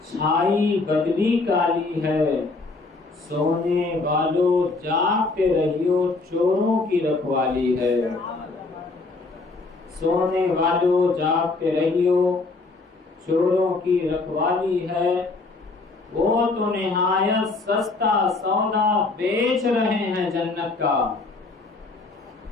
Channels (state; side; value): quieter; right; 3.6 dB